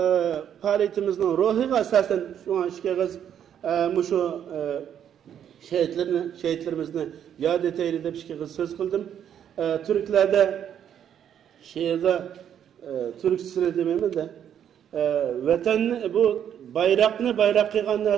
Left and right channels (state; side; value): quieter; left; 9.4 dB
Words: faaliyetimizin ruhiga asasen şu an işkağız şu şehitlerimizni yad eteyli de işkağız söz kıldım. Türklerde şehirde Türkçesine demeyeyim de vatan bu bayrak kıygan